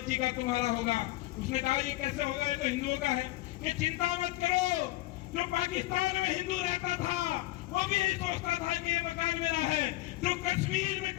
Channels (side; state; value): right; quieter; 18.3 dB